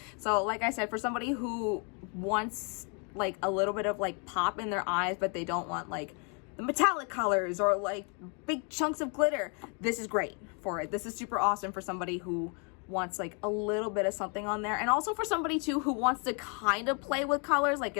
So, like I said, for somebody who wants like a little bit of like pop in their eyes, but they don't want like the metallic colors or like big chunks of glitter, this is great for it. This is super awesome for somebody who wants like a little bit of something on there, and also for somebody too who wants to kind of play with colors, like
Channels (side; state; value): right; quieter; 37.4 dB